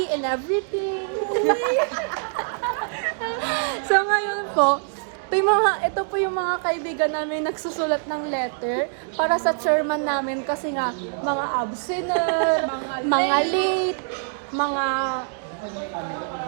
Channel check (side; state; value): left; silent; digital silence